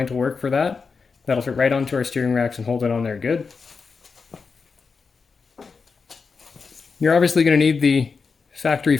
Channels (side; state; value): right; quieter; 5.0 dB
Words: will work for that. That'll fit right onto our steering racks and hold it on there good. You're obviously going to need the factory